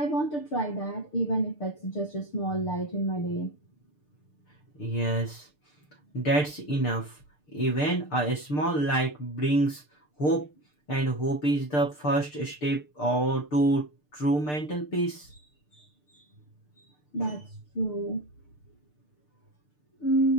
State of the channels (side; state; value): right; late; 6.7 ms